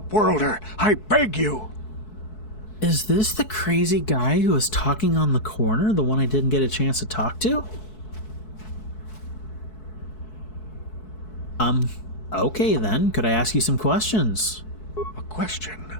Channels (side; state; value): right; late; 4.6 ms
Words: I beg you. Is this the crazy guy who was talking on the corner? The one I didn't get a chance to talk to? Okay then. Could I ask you some questions? A question?